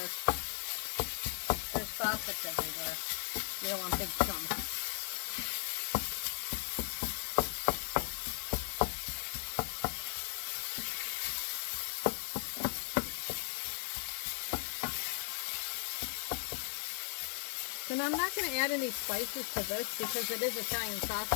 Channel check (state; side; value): silent; right; digital silence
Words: there's sausage everywhere. You don't want big chunks. And I'm not going to add any spices to this because it is Italian